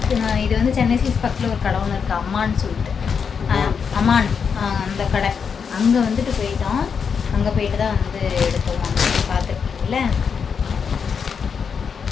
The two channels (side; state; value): right; quieter; 6.4 dB